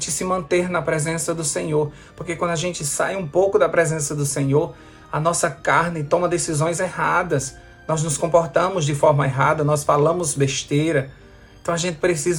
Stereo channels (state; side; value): identical; both; correlation 1.00